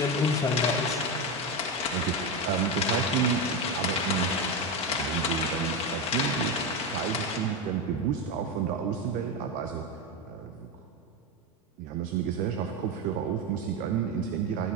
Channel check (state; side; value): normal; both; correlation 0.14